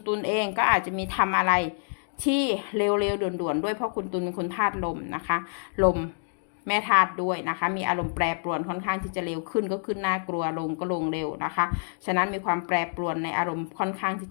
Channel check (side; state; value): right; silent; digital silence